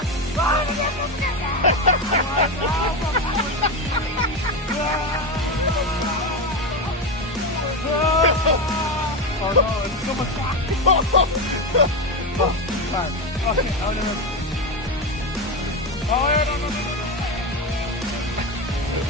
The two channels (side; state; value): both; normal; correlation 0.15